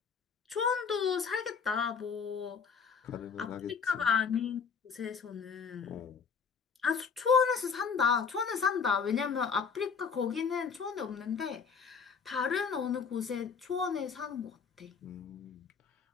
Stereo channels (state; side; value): quieter; right; 6.0 dB